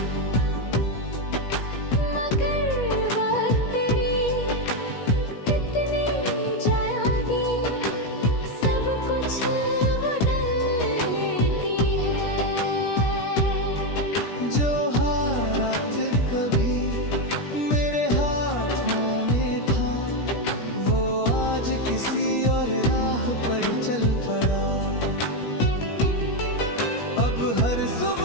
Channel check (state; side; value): late; right; 17 ms